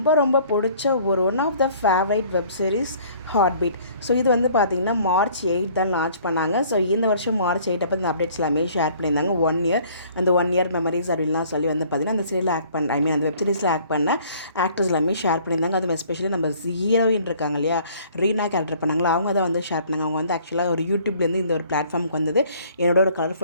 ரொம்ப பிடிச்ச one of the favourite web series Heart Beat. So இது பார்த்தீங்கன்னா March 8 தான் லான்ச் பண்ணாங்க. ஸோ இந்த வருஷம் March 8 அப்போ இந்த அப்டேட்ஸ் எல்லாமே ஷேர் பண்ணியிருந்தாங்க. 1 இயர் அந்த 1 இயர் மெமரிஸ் அப்படின்லாம் சொல்லி பார்த்தீங்கன்னா அந்த சீரியல் ஆக்ட் பண்ண அந்த வெப் சீரிஸ் ஆக்ட் பண்ண ஆக்டர்ஸ் எல்லாமே ஷேர் பண்ணியிருந்தாங்க. அது எஸ்பெஷலி நம்ம ஹீரோயின் இருக்காங்க இல்லையா, ரீனா கேரக்டர் பண்ணாங்களா, அவங்க தான் ஷேர் பண்ணாங்க. அவங்க ஆக்சுவலாக ஒரு யூடியூப்லேருந்து இந்த ஒரு பிளாட்ஃபார்முக்கு வந்தது என்னோட ஒரு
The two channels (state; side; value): inverted; both; correlation -0.56